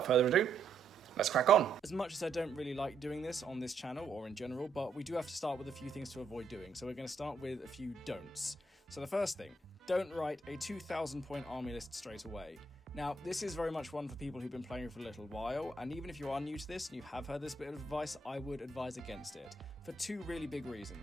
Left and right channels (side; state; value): left; quieter; 3.6 dB